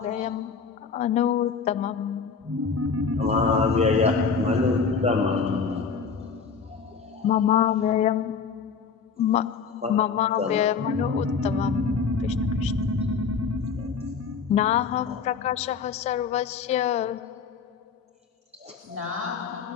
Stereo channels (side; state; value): right; quieter; 5.7 dB